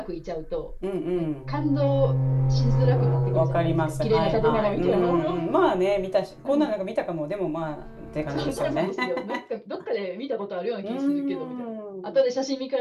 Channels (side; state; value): both; identical; correlation 1.00